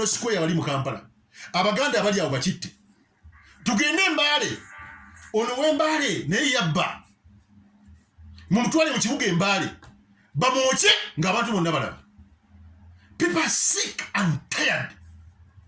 Square wali mu Kampala abaganda abali awo bakitte tugende Mbale ono w'Embale naye yabba mumutwale mu kibuga Embale bamwoche ng'abantu bonna balaba. People are sick and tired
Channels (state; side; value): identical; both; correlation 1.00